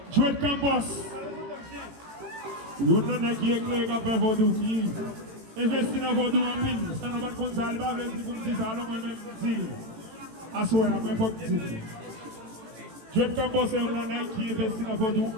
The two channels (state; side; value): late; left; 18 ms